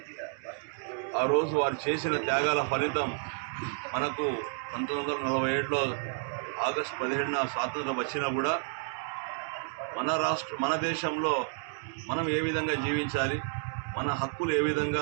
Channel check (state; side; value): silent; left; 57 dB below the other